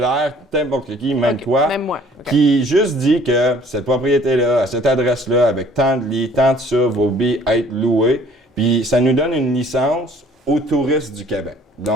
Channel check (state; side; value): normal; both; correlation 0.55